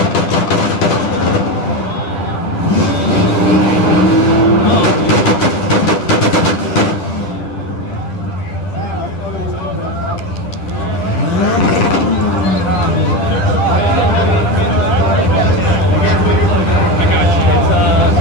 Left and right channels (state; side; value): late; right; 11 ms